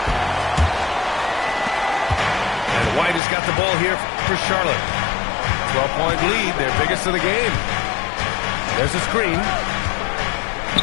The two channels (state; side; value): drops out; right; at 3.2 s